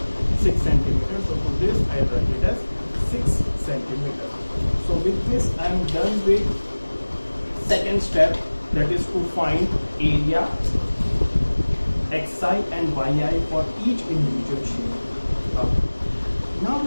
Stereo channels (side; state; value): both; inverted; correlation -1.00